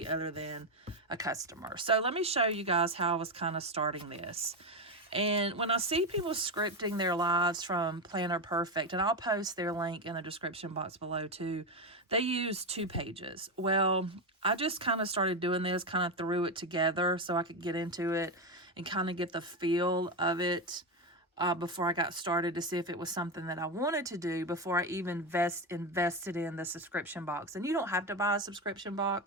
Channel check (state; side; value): normal; both; correlation 0.12